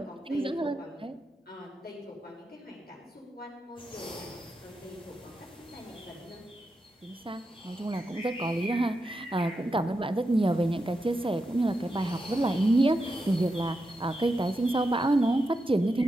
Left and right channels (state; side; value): normal; both; correlation 0.87